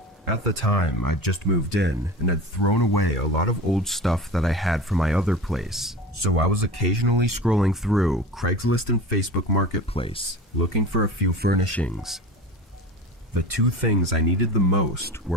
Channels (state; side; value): normal; both; correlation 0.32